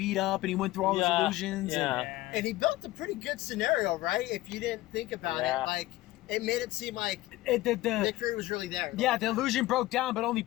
up, and he went through all Yeah. those illusions. Yeah. Yeah. And he built a pretty good scenario, right? If you didn't think about Yeah. it, like it made it seem like And the Nick Fury was really there. yeah, the illusion broke down, but only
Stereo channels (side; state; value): right; quieter; 17.3 dB